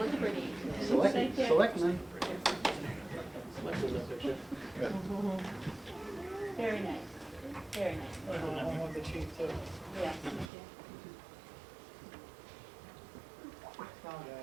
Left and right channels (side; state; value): left; drops out; at 10.5 s